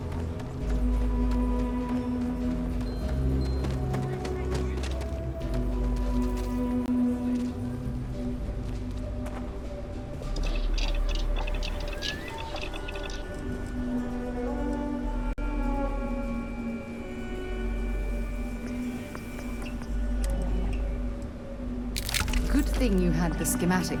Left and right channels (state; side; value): identical; both; correlation 1.00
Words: Good thing you had the